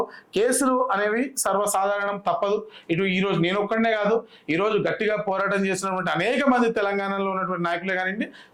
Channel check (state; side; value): identical; both; correlation 1.00